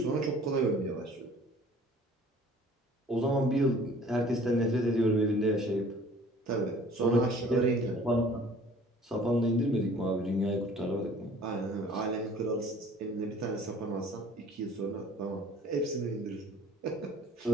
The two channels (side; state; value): both; normal; correlation 0.50